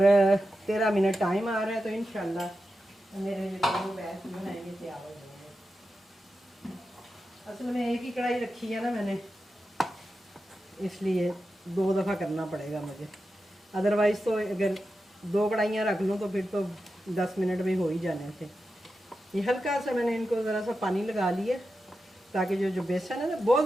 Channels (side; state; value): both; normal; correlation 0.90